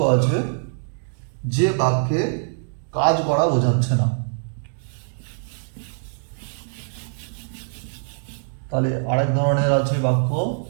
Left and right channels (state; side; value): silent; left; digital silence